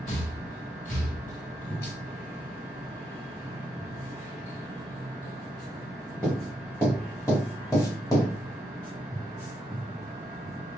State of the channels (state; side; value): normal; both; correlation 0.80